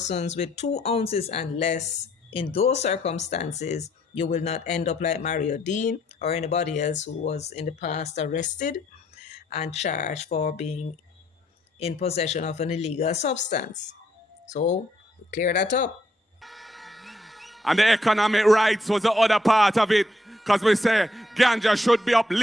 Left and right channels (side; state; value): both; normal; correlation 0.71